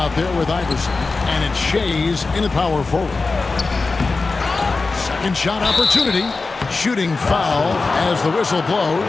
there with Iverson, and it's Shays in the power forward. Second shot opportunity. Shooting foul as the whistle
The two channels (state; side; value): quieter; right; 3.9 dB